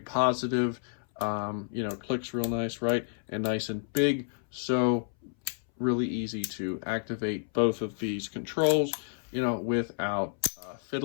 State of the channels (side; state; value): right; silent; 58 dB below the other